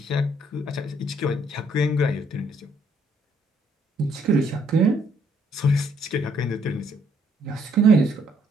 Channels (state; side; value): normal; both; correlation 0.68